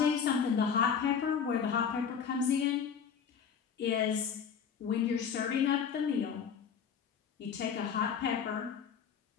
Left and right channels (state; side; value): quieter; right; 7.2 dB